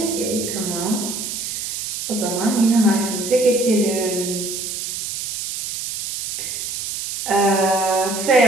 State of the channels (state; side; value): noise; right; hiss, 5 dB below the sound